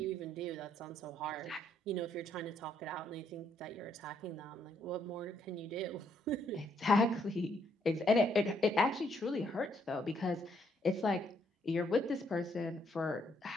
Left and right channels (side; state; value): both; normal; correlation 0.71